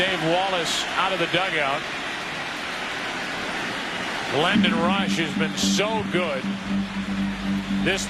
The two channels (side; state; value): both; identical; correlation 1.00